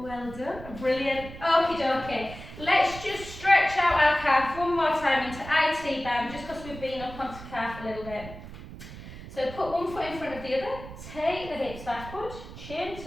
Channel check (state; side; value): noise; right; rumble, 13 dB below the sound